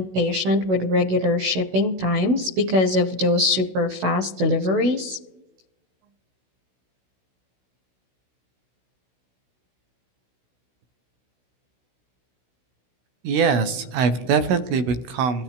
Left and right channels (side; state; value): left; late; 16 ms